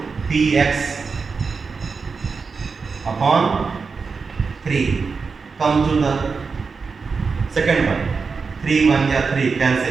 px upon 3. Come to the second one. 3 1 is 3,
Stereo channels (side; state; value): left; quieter; 5.0 dB